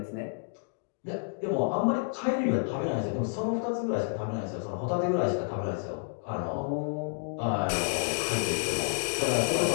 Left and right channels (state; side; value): silent; right; digital silence